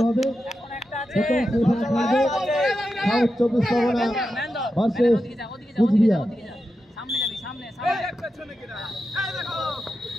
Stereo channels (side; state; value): both; normal; correlation 0.89